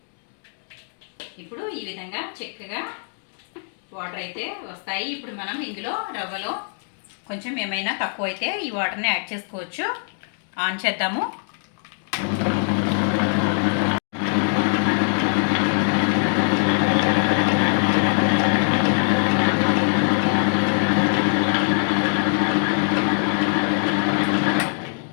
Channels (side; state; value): right; silent; 55 dB below the other